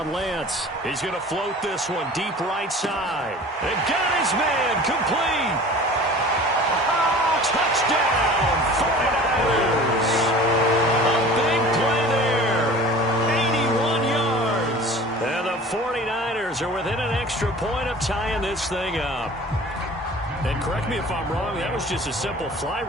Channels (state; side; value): normal; both; correlation 0.42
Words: Lance. He's going to float this one deep right side. And got his man complete. Touchdown, 49ers. A big play there. 81 yards. And the 49ers are within an extra point of tying this thing up. And correct me if I'm wrong, that was just a simple fly